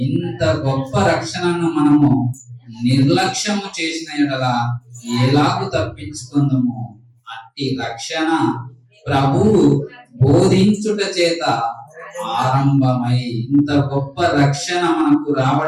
గొప్ప రక్షణను మనము నిర్లక్ష్యము చేసిన యెడల ఎలాగు తప్పించుకుందాము? అట్టి రక్షణ ప్రభువు బోధించుట చేత ఆరంభమై, ఇంత గొప్ప రక్షణ మనకు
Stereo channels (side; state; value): both; identical; correlation 1.00